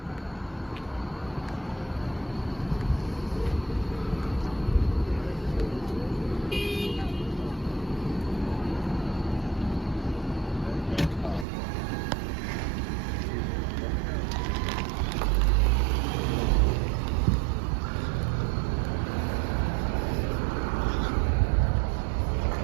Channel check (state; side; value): drops out; left; at 11.5 s